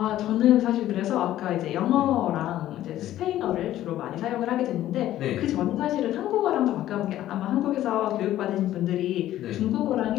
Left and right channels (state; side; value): quieter; right; 13.3 dB